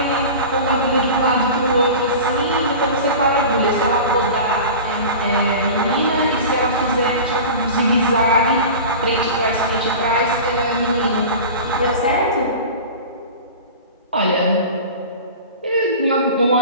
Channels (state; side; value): inverted; both; correlation -0.34